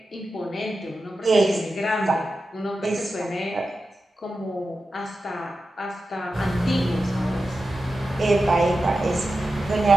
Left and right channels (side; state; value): both; normal; correlation 0.92